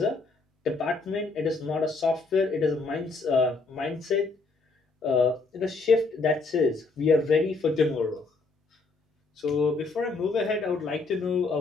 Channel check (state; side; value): quieter; right; 3.8 dB